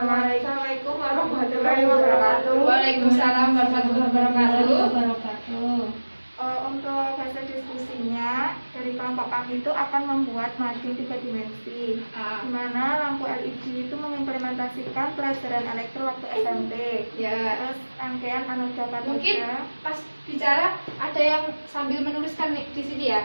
warahmatullahi wabarakatuh. Waalaikumsalam warahmatullahi wabarakatuh. Untuk hasil diskusinya dari kelompok kami itu akan membuat mading 3 dimensi, di mana lampu LED itu mengimplementasikan pelajaran elektro waktu SMP. Ya. Terus rangkaian anoda katoda. Mungkin pas bicara ada yang sambil menuliskan di sini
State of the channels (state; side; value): inverted; both; correlation -1.00